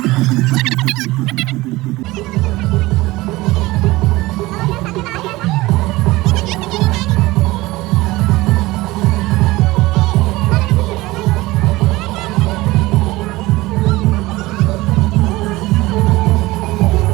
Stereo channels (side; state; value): left; quieter; 19.7 dB